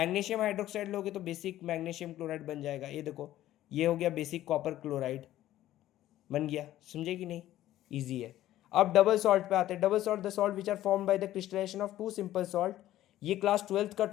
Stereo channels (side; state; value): right; quieter; 13.8 dB